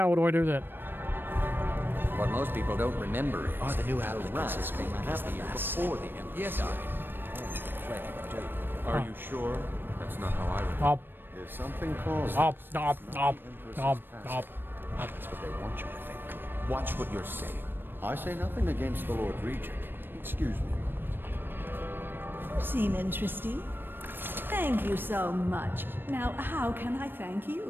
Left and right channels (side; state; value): left; late; 0.097 ms